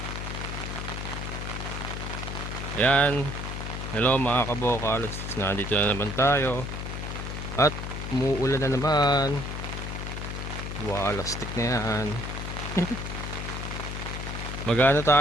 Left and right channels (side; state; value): left; noise; hum, 5 dB below the sound